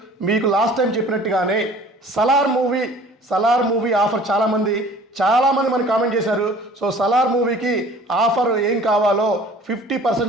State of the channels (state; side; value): normal; both; correlation 0.48